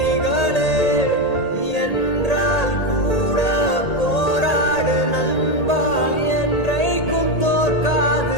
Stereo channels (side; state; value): right; late; 1.8 ms